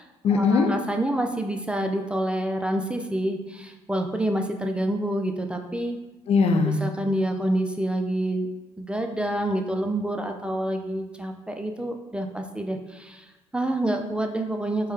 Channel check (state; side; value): normal; both; correlation 0.79